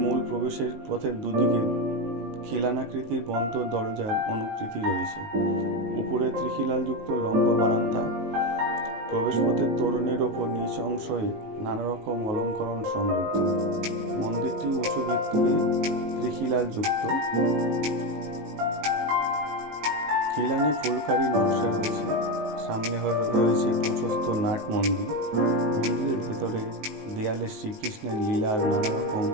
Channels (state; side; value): late; left; 19 ms